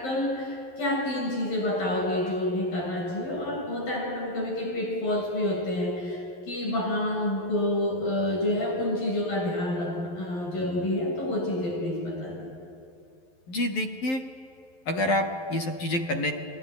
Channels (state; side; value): late; right; 11 ms